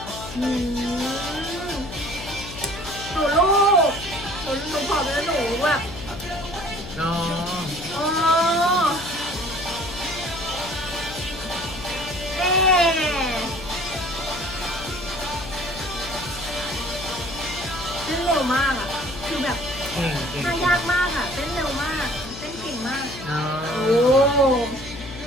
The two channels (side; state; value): left; noise; hum, 12 dB below the sound